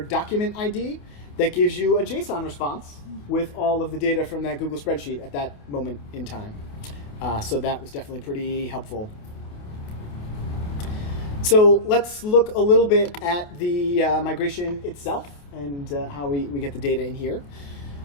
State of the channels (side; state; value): right; late; 28 ms